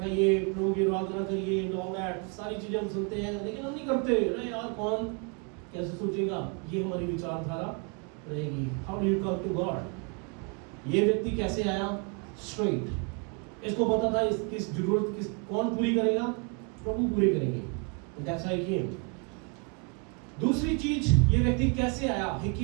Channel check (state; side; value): quieter; left; 36.6 dB